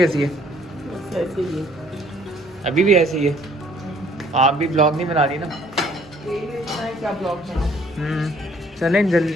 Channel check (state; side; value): normal; both; correlation 0.60